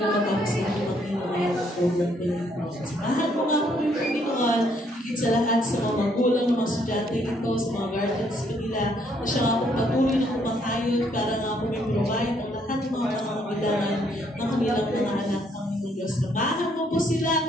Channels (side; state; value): both; normal; correlation 0.69